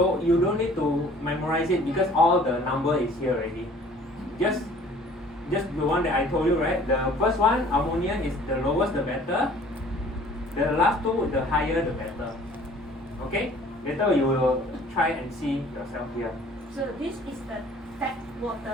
you don't need to memorize it because all the number is here already. Just the one that I told you, right? The first one, ammonia, is the lowest the better. The last two, the higher the better. Okay? Later you will try and see yourself here. So this is the tap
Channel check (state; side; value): normal; both; correlation 0.52